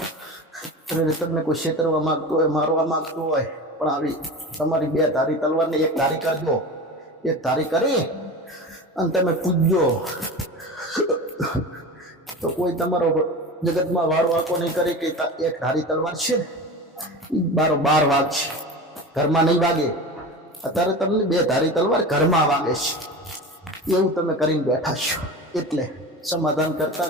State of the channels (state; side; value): normal; both; correlation 0.30